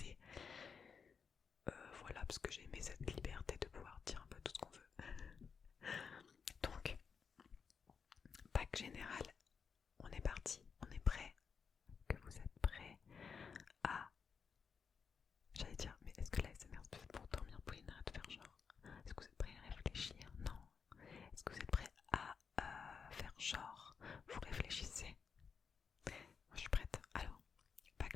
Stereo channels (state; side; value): quieter; right; 6.0 dB